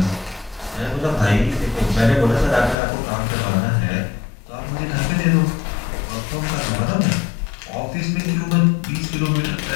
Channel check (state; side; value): drops out; right; at 2.8 s